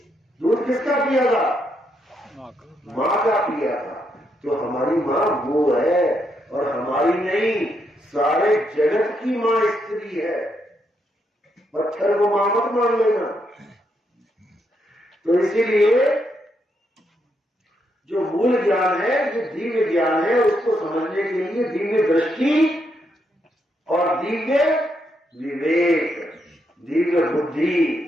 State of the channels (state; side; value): normal; both; correlation 0.78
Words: दूध किसका पिया था, मां का पिया था। तो हमारी मां वो है, और हमारी नहीं, सारे जगत की मां स्त्री है। पत्थर को मां मत मान लेना। तो इसीलिए जो मूल ज्ञान है, जो दिव्य ज्ञान है, उसको समझने के लिए दिव्य दृष्टि और दिव्य विवेक, दिव्य बुद्धि,